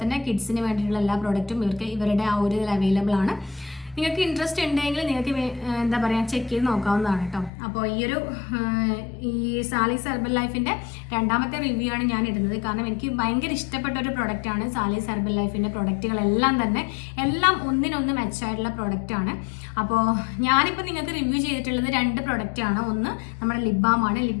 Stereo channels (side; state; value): right; drops out; at 7.5 s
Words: തന്നെ കിഡ്സിന് വേണ്ടിയിട്ടുള്ള എല്ലാ പ്രൊഡക്റ്റും ഇവരുടെ ആ ഒരു ഇതിൽ അവൈലബിൾ ആണ്. നിങ്ങൾക്ക് ഇൻട്രസ്റ്റ് ഉണ്ടെങ്കിൽ നിങ്ങൾക്ക് എന്താ പറയുക ചെക്ക് ചെയ്ത് നോക്കാവുന്നതാണ് കേട്ടോ. അപ്പോൾ ഈ സാലീസ് ഹെർബൽ ലൈഫിൻ്റെ രണ്ടാമത്തെ റിവ്യൂ ആണ് ഞാൻ ഇടുന്നത്. കാരണം എനിക്ക് ഭയങ്കര ഇഷ്ടപ്പെട്ട ഒരു പ്രൊഡക്റ്റാണ് സാലീസ് ഹെർബൽ ലൈഫിൻ്റെ പ്രൊഡക്റ്റുകളെല്ലാം തന്നെ. എല്ലാം ഒന്നിനൊന്ന് മെച്ചായിട്ടുള്ള പ്രൊഡക്റ്റാണ്. അപ്പോൾ ഞാനിപ്പോൾ നിങ്ങൾക്ക് റിവ്യൂ ചെയ്തിട്ടുള്ളത് 2 പ്രൊഡക്റ്റാണ്. ഒന്ന് നമ്മുടെ ലിപ് ബാമാണ്.